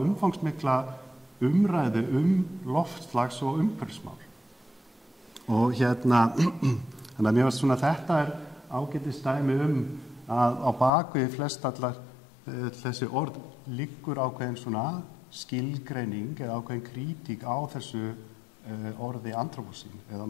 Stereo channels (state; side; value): drops out; right; at 10.9 s